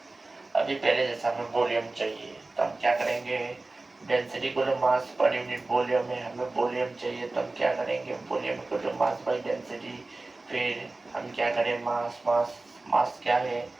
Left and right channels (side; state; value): left; quieter; 3.2 dB